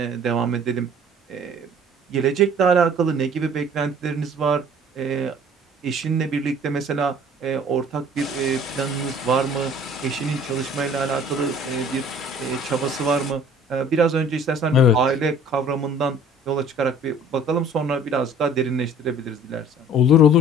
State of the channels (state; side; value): normal; both; correlation 0.50